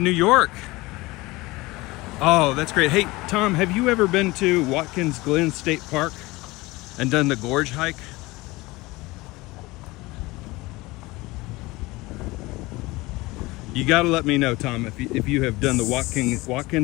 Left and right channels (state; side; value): quieter; right; 21.3 dB